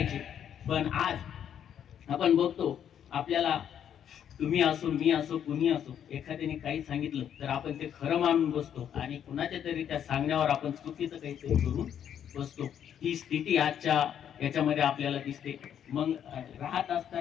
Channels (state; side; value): quieter; right; 9.2 dB